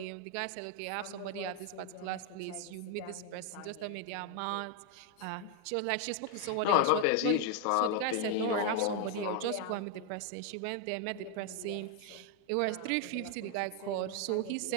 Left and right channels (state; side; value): different; both; correlation 0.01